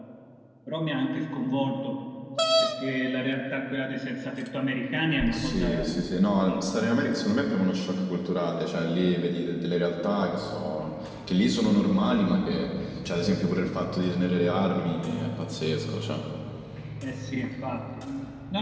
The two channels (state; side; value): identical; both; correlation 1.00